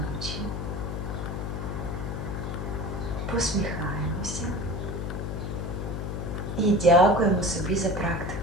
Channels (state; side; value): noise; left; hum, 4 dB below the sound